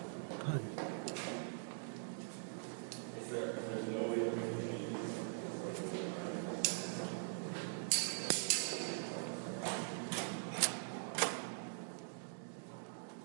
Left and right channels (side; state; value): left; silent; digital silence